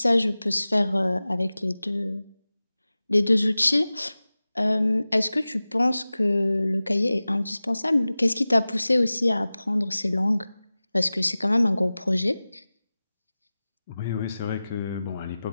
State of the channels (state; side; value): inverted; both; correlation -0.97